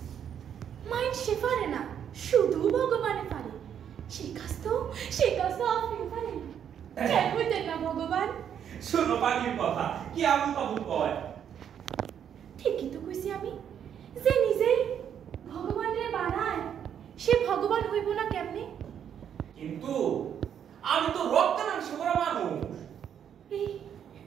মানুষে পারে না, শুধু ভগবানে পারে, সে কাজ তো আপনি পারেন। কেন হইতেন না ভগবান? শোনো পাখির কথা, কি আবুল তাবুল কয়? ঠিকই তো কইছি আমি, যে নিজেই ভগবানরে বানায়, সে ভগবান হইব না কেমনে? কিন্তু আমি তো রক্তে মাংসে গড়া মানুষ। এই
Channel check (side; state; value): left; quieter; 8.8 dB